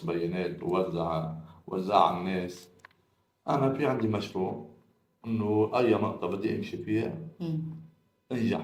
بيانات ووزع على الناس. أنا في عندي مشروع، إنه أي نقطة بدي أمشي فيها مم.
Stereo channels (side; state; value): both; identical; correlation 1.00